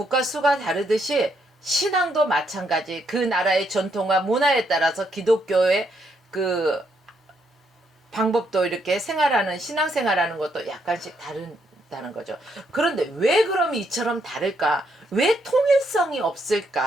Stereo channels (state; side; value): normal; both; correlation 0.75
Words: 수가 다르듯이 신앙도 마찬가지. 그 나라의 전통과 문화에 따라서 기독교의 그 방법도 이렇게 신앙생활하는 것도 약간씩 다르다는 거죠. 그런데 왜 그럼 이처럼 다를까? 왜 통일성이